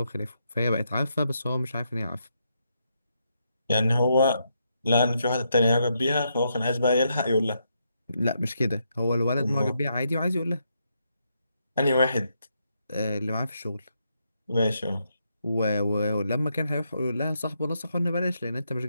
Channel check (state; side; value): inverted; both; correlation -0.80